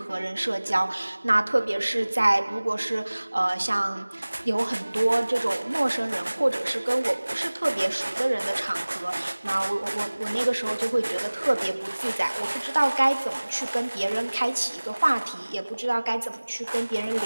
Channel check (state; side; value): inverted; both; correlation -1.00